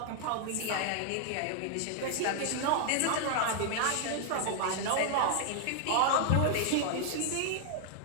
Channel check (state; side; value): different; both; correlation 0.00